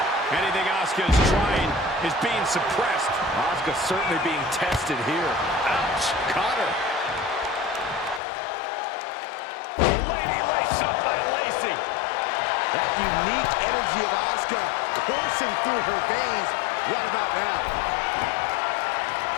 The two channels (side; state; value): right; drops out; at 8.2 s